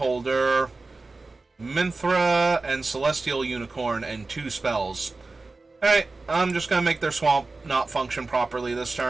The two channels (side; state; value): left; quieter; 3.6 dB